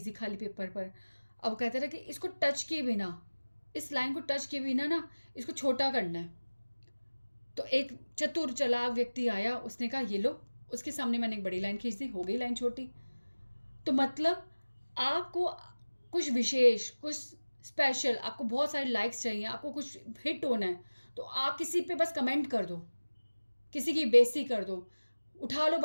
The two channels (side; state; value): both; inverted; correlation -1.00